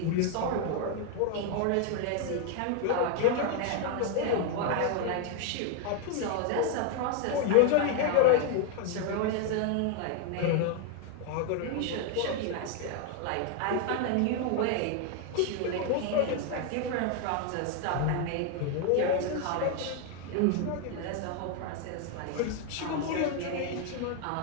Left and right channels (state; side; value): different; both; correlation 0.01